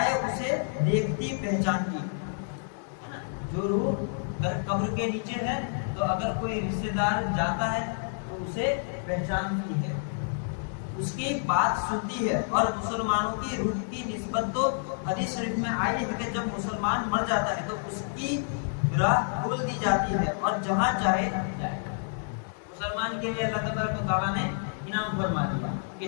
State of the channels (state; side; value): silent; right; 59 dB below the other